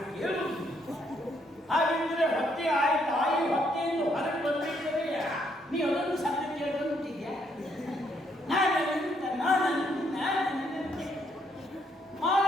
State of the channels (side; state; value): both; normal; correlation 0.72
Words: ಕೇಳುವುದು ಹಾಗೆಂದ್ರೆ ಹೊಟ್ಟೆ ತಾಯಿ ಹೊಟ್ಟೆಯಿಂದ ಹೊರಗೆ ಬಂದಿದ್ದರೆ ನೀ ಅದನ್ನು ಸಣ್ಣ ಕೇಳ್ಕೊಂಡ್ಬಿಟ್ಟಿದ್ಯಾ